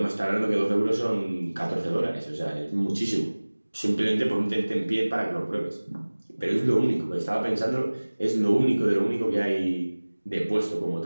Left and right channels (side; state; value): both; inverted; correlation -1.00